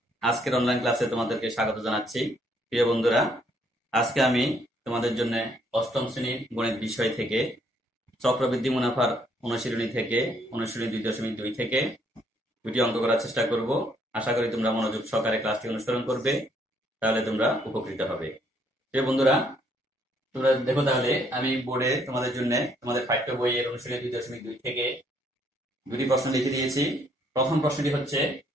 আজকের অনলাইন ক্লাসে তোমাদেরকে স্বাগত জানাচ্ছি। প্রিয় বন্ধুরা, আজকে আমি তোমাদের জন্য অষ্টম শ্রেণীর গণিত বিষয় থেকে চক্রবৃদ্ধি মুনাফার অনুশীলনী থেকে অনুশীলনী 2.2 থেকে দুটি অঙ্ক করার চেষ্টা করব। আশা করি তোমরা মনোযোগ সহকারে ক্লাসটি অনুসরণ করবে, তাহলে তোমরা উপকৃত হবে। প্রিয় বন্ধুরা, তোমরা দেখো, তাহলে আমি বোর্ডে তোমাদের জন্য তোমাদের পাঠ্য বইয়ের অনুশীলনী 2.2 থেকে দুটি প্রশ্ন লিখে দিয়েছি। প্রথম প্রশ্নটি হচ্ছে,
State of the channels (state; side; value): normal; both; correlation 0.68